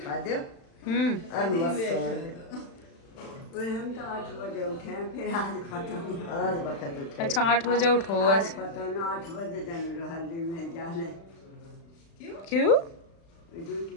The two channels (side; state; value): right; late; 36 ms